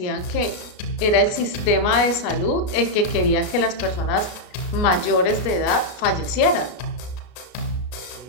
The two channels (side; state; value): right; late; 33 ms